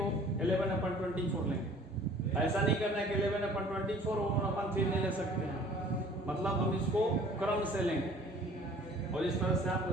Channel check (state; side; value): normal; both; correlation 0.51